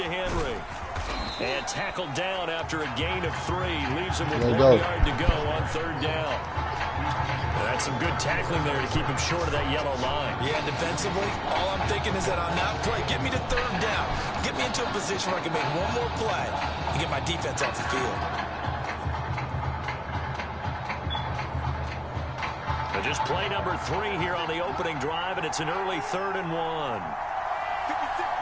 Henry. And tackled down after a gain of 3. Leaves him with 1 yard to go on 3rd down. That's some good tackling there to keep him short of that yellow line. Yeah, defensively, all I'm thinking is that on that play, get me to 3rd down. Get me into a position where I can make one more play and get my defense off the field. So just play number 3 here on the opening drive, and it's an early 3rd and 1.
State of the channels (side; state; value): both; identical; correlation 1.00